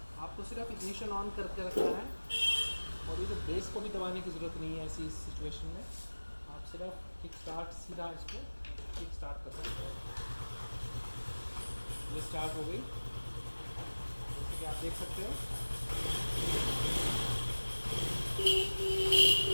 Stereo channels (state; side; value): inverted; both; correlation -1.00